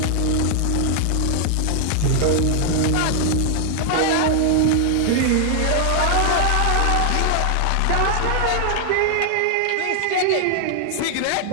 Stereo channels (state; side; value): different; both; correlation 0.00